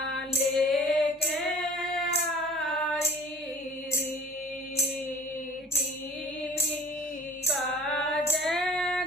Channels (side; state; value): both; normal; correlation 0.49